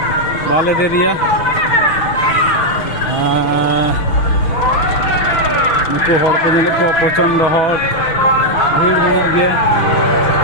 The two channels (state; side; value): late; right; 6.4 ms